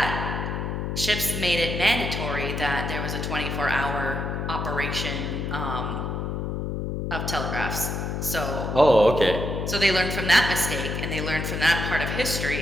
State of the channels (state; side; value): noise; left; hum, 3 dB below the sound